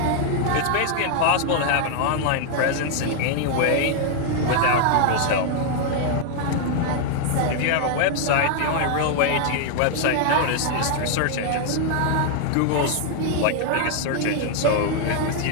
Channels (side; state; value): both; different; correlation 0.00